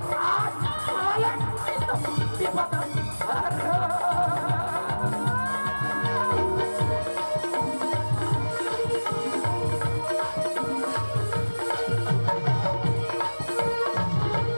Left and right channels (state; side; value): inverted; both; correlation -1.00